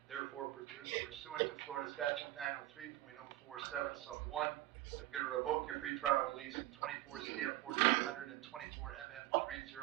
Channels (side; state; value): left; quieter; 16.0 dB